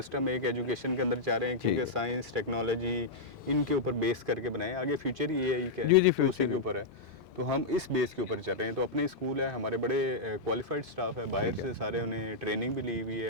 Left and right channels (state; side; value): quieter; right; 3.0 dB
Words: एक एजुकेशन के अंदर चाह रहे हैं, क्योंकि साइंस टेक्नोलॉजी इनके ऊपर बेस करके बनाए, आगे फ्यूचर ही एआई का है तो उसी के ऊपर है, तो हम इस बेस के ऊपर चल रहे हैं। तो अपने स्कूल है, हमारे बड़े क्वालिफाइड स्टाफ है, बाहर से सारे उन्हें ट्रेनिंग भी ली हुई